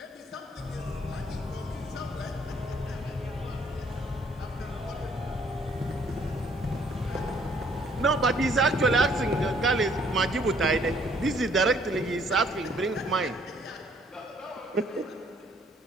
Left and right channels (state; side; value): normal; both; correlation 0.63